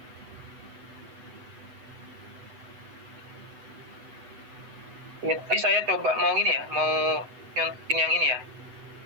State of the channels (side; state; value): left; late; 8.1 ms